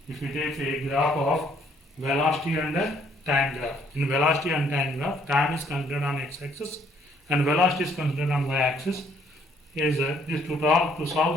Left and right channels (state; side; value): normal; both; correlation 0.65